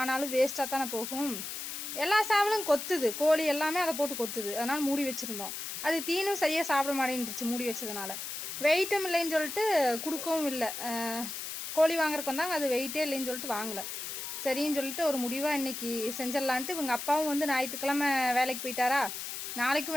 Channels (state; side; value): noise; left; hiss, 6 dB below the sound